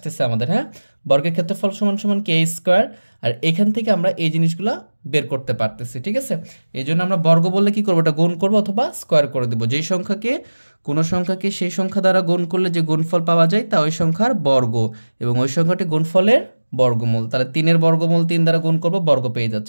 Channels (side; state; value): both; inverted; correlation -1.00